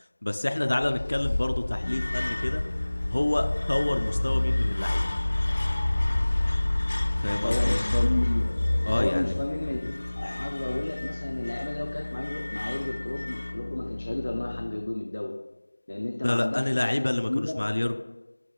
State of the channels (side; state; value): both; inverted; correlation -1.00